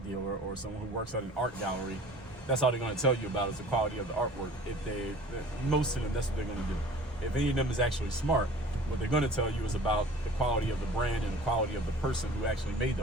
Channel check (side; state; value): both; normal; correlation 0.45